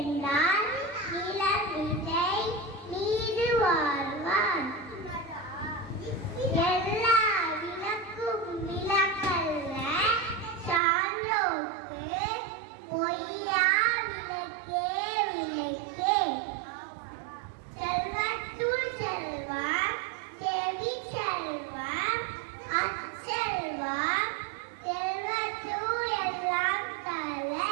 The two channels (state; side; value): drops out; left; at 10.8 s